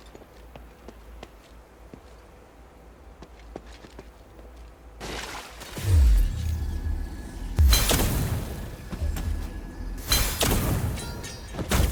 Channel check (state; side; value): identical; both; correlation 1.00